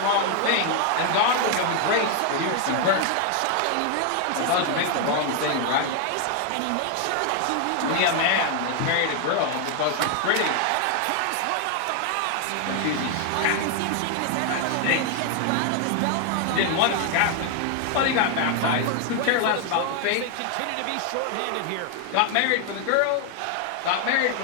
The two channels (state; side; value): different; both; correlation 0.00